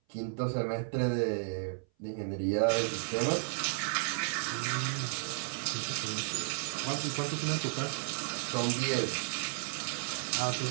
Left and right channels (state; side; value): silent; left; 56 dB below the other